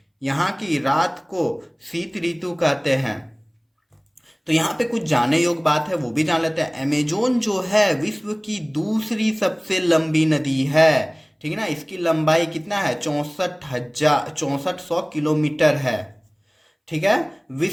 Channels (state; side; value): identical; both; correlation 1.00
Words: यहाँ की रात को शीत ऋतु कहते हैं। तो यहाँ पे कुछ जानने योग्य बात है, वो भी जान लेते हैं। अमेजोन जो है विश्व की दूसरी सबसे लंबी नदी है, ठीक है ना। इसकी लंबाई कितना है? 6400 किलोमीटर है, ठीक है।